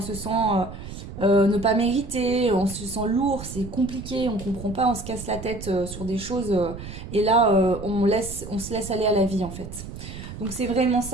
se sent ne pas mériter, on se sent lourd, c'est compliqué, on comprend pas, on se casse la tête sur des choses. Et là, on se laisse aller à la vie en fait. Donc c'est vraiment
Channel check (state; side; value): noise; right; rumble, 11 dB below the sound